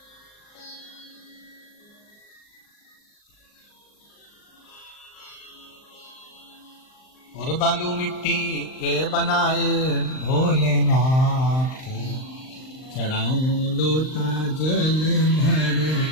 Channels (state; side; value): late; right; 39 ms